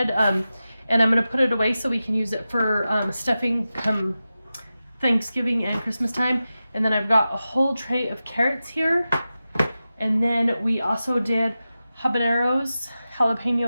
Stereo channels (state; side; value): inverted; both; correlation -0.93